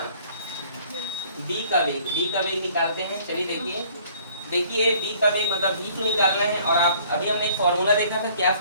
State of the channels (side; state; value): both; inverted; correlation -0.56